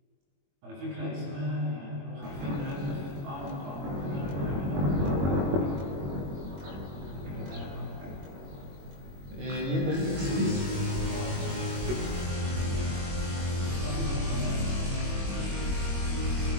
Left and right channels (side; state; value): left; late; 21 ms